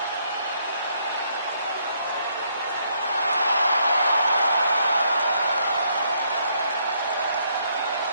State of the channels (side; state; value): both; inverted; correlation -0.71